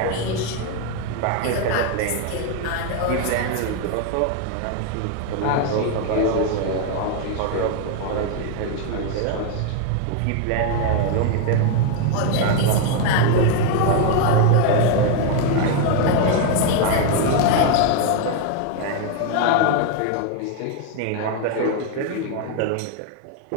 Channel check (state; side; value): different; both; correlation 0.01